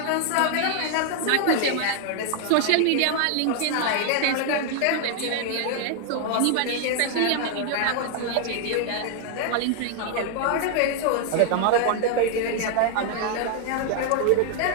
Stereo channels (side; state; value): both; different; correlation 0.00